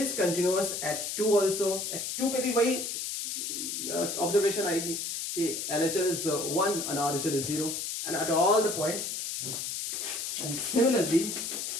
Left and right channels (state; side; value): noise; left; hiss, 4 dB below the sound